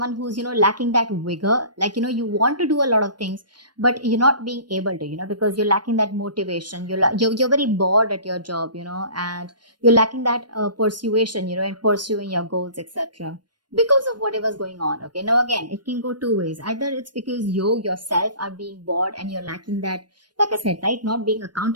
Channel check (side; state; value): left; late; 0.71 ms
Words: who's, lacking that vigor. Like, you want to do a lot of things, but you're not being able to, because you're lacking that motivation. You're very bored at your job, and you're lacking that persuasion, in pursuing your goals, etc. Because of whatever's going on. Okay. Now, again, it can go two ways. Either it's because you yourself are being bored and you're lacking that, like I said, right, not being